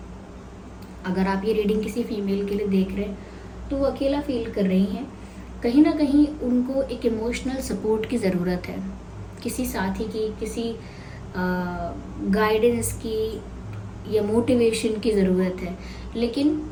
अगर आप ये रीडिंग किसी फीमेल के लिए देख रहे हैं तो वो अकेला फील कर रही हैं। कहीं ना कहीं उनको एक इमोशनल सपोर्ट की ज़रूरत है, किसी साथी की, किसी गाइडेंस की या मोटिवेशन की ज़रूरत है। लेकिन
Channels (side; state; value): both; identical; correlation 1.00